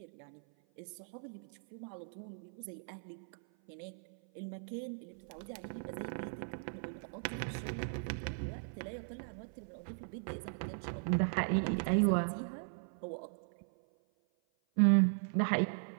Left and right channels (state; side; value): silent; left; 52 dB below the other